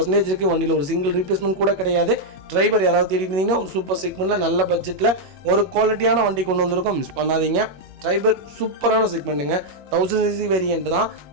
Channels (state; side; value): late; left; 21 ms